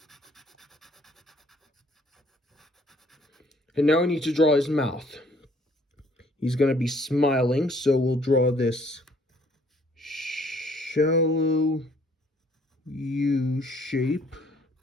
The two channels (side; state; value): both; normal; correlation 0.61